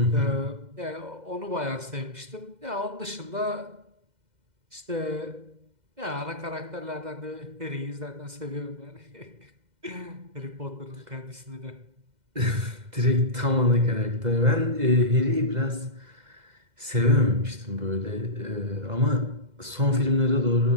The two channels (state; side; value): late; left; 2.0 ms